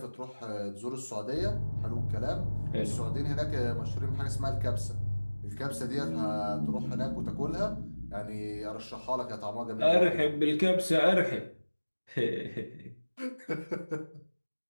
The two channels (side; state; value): both; inverted; correlation -1.00